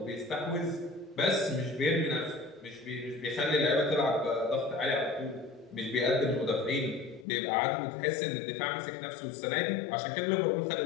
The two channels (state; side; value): drops out; right; at 7.2 s